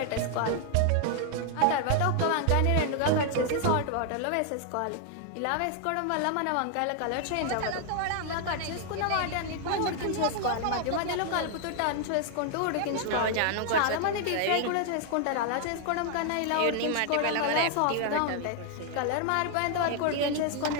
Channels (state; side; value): different; both; correlation 0.00